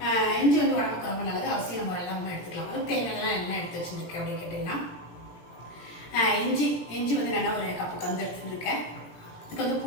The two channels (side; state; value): right; late; 17 ms